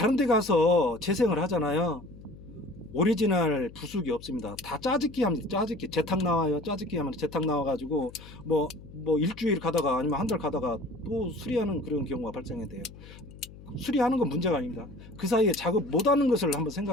데 가서 재생을 하잖아요. 오리지널 부속이 없습니다. 다 짜집기 합니다. 짜집기. 재탁 나와요. 짜집기 하면 재탁 나와가지고 뭐 일주일 가다가 아니면 한 달 가다가 또 수리하는 그런 경우가 발생이 돼요. 수리하는 건 문제가 아닙니다. 그 사이에 작업 못하는 것을 한번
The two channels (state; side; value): noise; left; hum, 18 dB below the sound